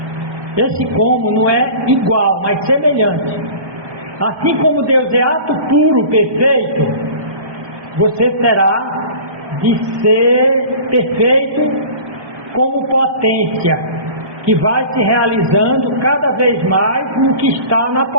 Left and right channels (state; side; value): late; left; 1.2 ms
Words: Esse como não é igual, mas semelhante. Assim como Deus é ato puro, perfeito, você terá de ser perfeito como potência, que vai se realizando cada vez mais no que está na